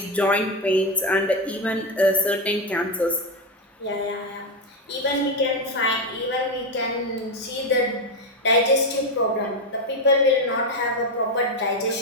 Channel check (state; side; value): normal; both; correlation 0.10